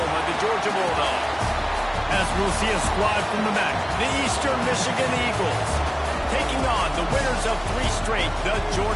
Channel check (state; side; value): identical; both; correlation 1.00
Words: of the Georgia Bulldogs. As we'll see a squad from the MAC, the Eastern Michigan Eagles, taking on the winners of 3 straight, the